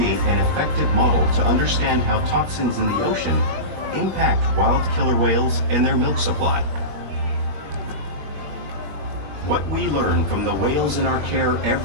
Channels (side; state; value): left; late; 21 ms